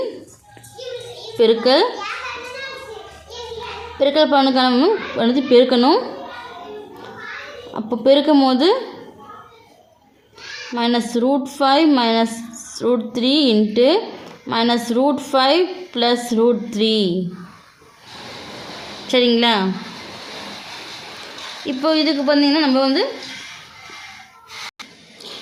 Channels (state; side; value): identical; both; correlation 1.00